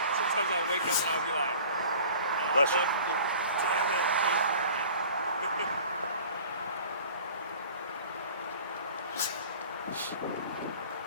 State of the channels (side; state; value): both; inverted; correlation -0.45